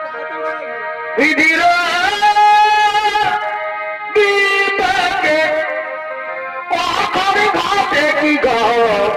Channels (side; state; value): both; identical; correlation 1.00